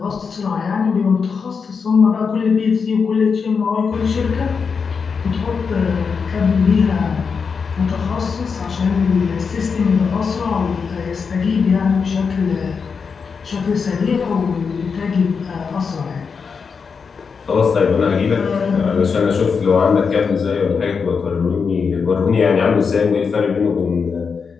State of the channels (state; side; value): quieter; right; 5.6 dB